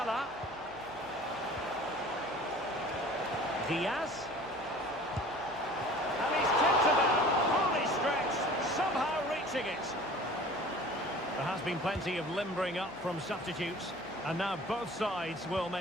Diaz. And he's tipped it out, fully stretched, somehow reaching it. There has been plenty of limbering up from substitutes. And now both sides will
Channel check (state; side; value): noise; left; hum, 23 dB below the sound